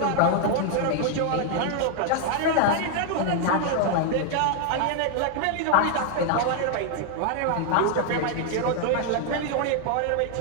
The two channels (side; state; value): both; different; correlation 0.00